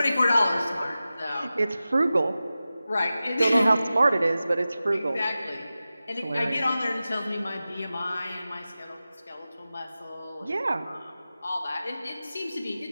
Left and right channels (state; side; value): inverted; both; correlation -0.94